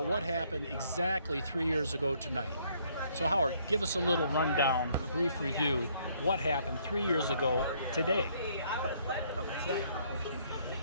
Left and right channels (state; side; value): inverted; both; correlation -0.66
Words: what happened exactly 3 years ago tonight. So Howard, give us a little rundown, a brief review, what happened 3 years ago today.